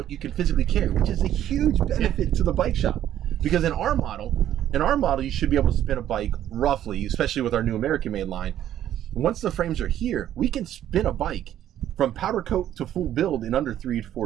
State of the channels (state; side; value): quieter; left; 11.5 dB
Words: you can physically carry, which is a huge benefit to the bike shop. Because in our model, you should be able to spin a bike roughly, especially with our new American made line. Once the frames are here, we can spin a bike from powder coat to full build in under 3 to